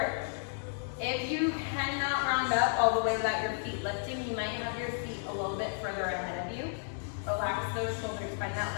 if you cannot round up all the way without your feet lifting, you might have your feet a little bit further ahead of you. Relax those shoulders, find that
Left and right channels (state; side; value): silent; right; digital silence